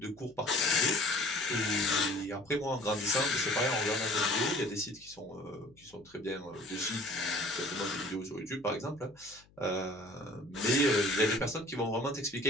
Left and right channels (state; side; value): noise; left; hum, 29 dB below the sound